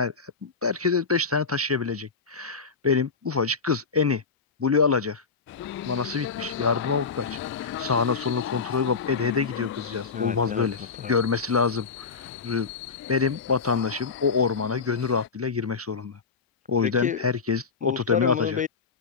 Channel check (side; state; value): right; quieter; 5.0 dB